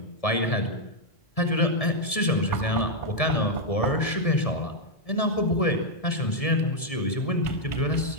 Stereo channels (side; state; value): right; late; 1.7 ms